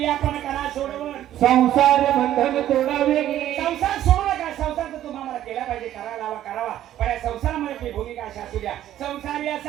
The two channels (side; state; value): left; quieter; 12.3 dB